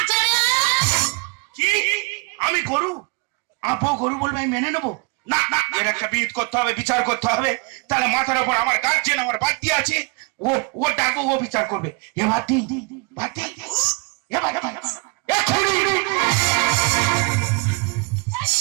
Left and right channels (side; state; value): left; quieter; 32.2 dB